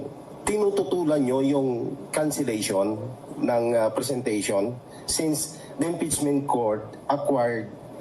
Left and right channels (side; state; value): both; identical; correlation 1.00